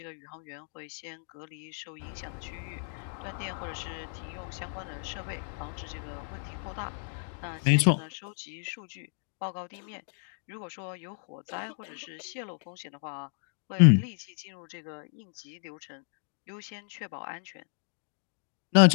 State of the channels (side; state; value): right; silent; 56 dB below the other